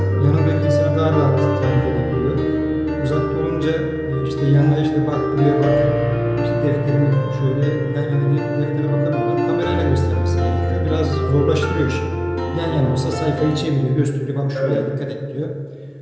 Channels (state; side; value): identical; both; correlation 1.00